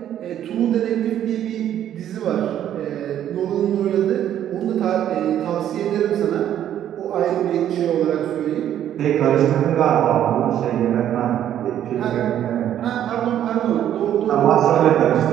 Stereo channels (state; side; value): quieter; left; 10.8 dB